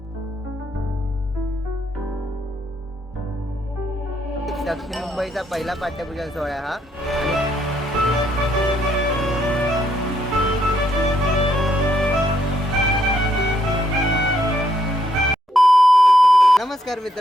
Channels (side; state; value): both; normal; correlation 0.73